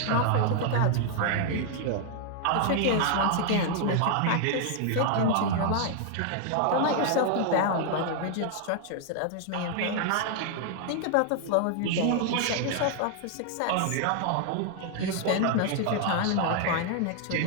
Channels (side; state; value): both; different; correlation 0.00